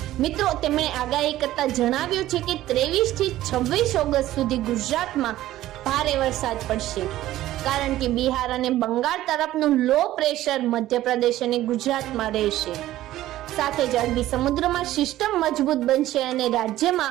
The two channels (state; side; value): quieter; left; 14.6 dB